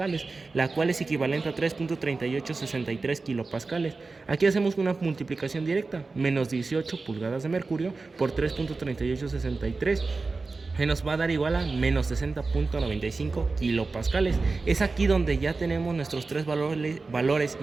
la cual es equivalente a 3.3863 kilopascales. Aquí hacemos una multiplicación directa, menos 18 pulgadas de mercurio por 3.3863. que nos va a dar igual a menos 60.95 kilopascales. Es aquí donde ya tenemos nuestros tres valores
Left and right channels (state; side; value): quieter; left; 3.9 dB